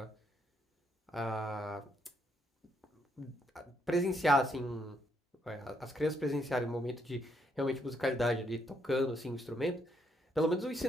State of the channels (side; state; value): both; normal; correlation 0.74